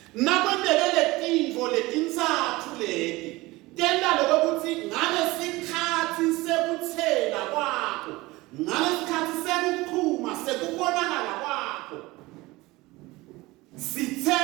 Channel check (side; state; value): left; quieter; 20.8 dB